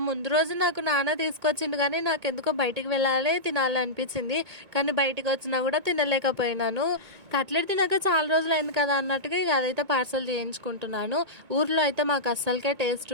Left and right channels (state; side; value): late; left; 2.2 ms